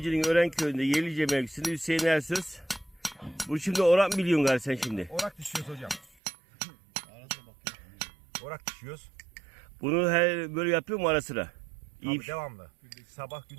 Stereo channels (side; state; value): left; drops out; at 6.1 s